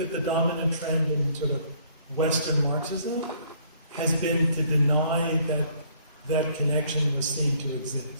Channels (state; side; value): inverted; both; correlation -0.62